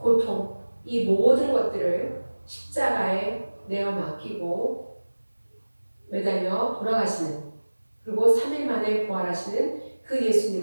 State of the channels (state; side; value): inverted; both; correlation -1.00